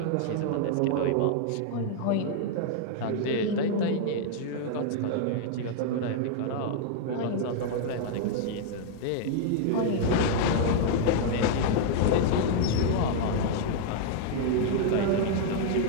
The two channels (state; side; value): different; both; correlation -0.01